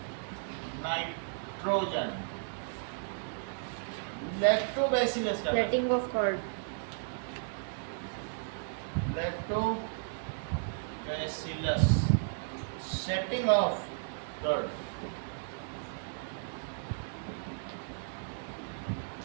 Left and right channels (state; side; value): silent; left; digital silence